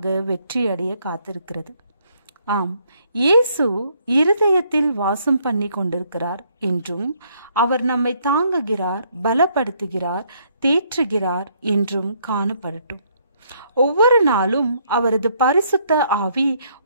வெற்றியடைய காத்திருக்கிறது. ஆம், இயேசு இருதயத்தில் வாசம் பண்ணி கொண்டிருக்கிறார் என்றும், அவர் நம்மை தாங்குகிறார், பலப்படுத்துகிறார், தேற்றுகிறார் என்றும் காணப்படட்டும். ஒவ்வொரு நாளும் அவரது பரிசுத்த ஆவி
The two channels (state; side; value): inverted; both; correlation -0.69